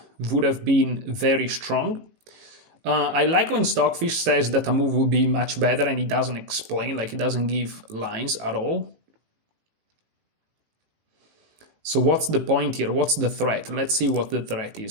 would have been very strong. I like when Stockfish says that a move will be much better, and he doesn't explain, like he doesn't give lines at all. So what's the point here? What's the threat? Let's see what the threat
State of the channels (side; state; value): left; late; 18 ms